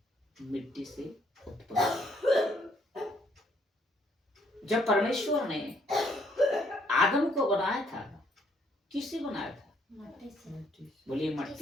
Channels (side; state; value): both; normal; correlation 0.68